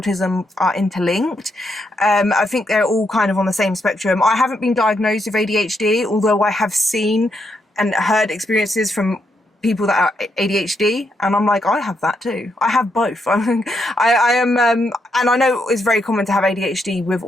are interlinked. I think they're all kind of on the same spectrum. I haven't been diagnosed with ADHD, although I have seen and heard experiences from people that are ADHD, and I'm like, I have that too. I have both. I am, and I know it's very common to have ADHD with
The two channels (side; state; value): both; normal; correlation 0.79